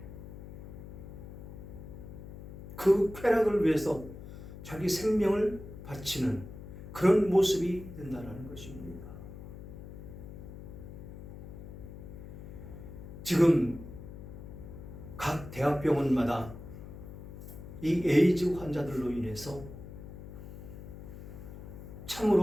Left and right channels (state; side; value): noise; left; hum, 12 dB below the sound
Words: 그 쾌락을 위해서 자기 생명을 바치는 그런 모습이 된다는 것입니다. 지금 각 대학병원마다 이 에이즈 환자들로 인해서